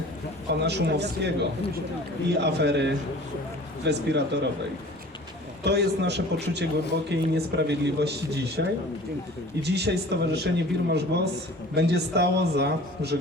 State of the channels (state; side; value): noise; right; rumble, 28 dB below the sound